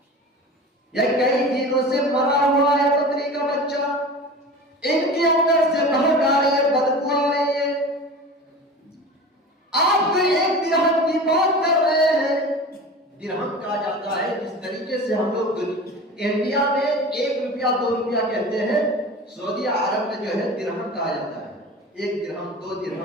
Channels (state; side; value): normal; both; correlation 0.35